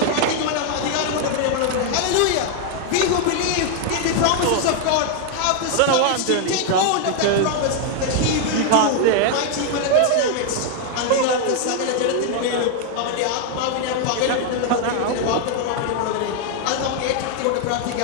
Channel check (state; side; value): different; both; correlation 0.00